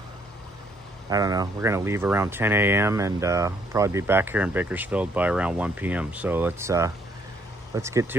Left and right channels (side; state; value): both; normal; correlation 0.67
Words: I don't know, we're gonna leave around 10 a.m. and probably be back here in Bakersfield by around 1 p.m. So let's get